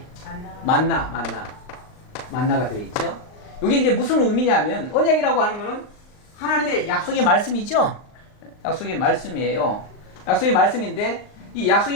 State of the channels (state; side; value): late; right; 39 ms